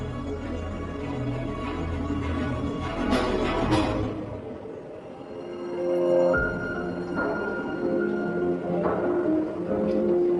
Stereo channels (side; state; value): both; identical; correlation 1.00